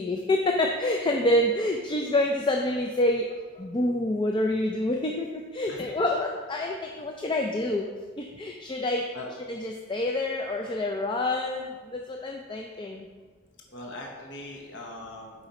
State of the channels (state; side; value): normal; both; correlation 0.37